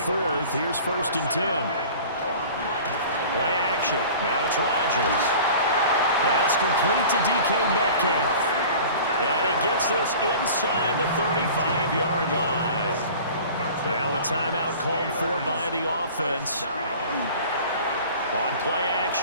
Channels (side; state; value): both; inverted; correlation -0.42